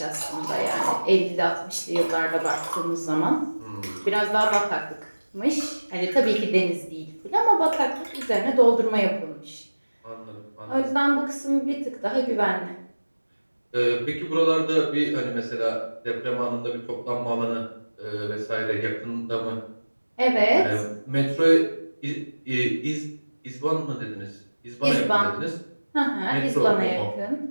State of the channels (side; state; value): both; inverted; correlation -1.00